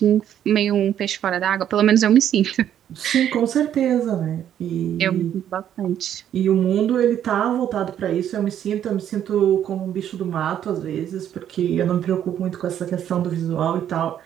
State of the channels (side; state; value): left; quieter; 10.2 dB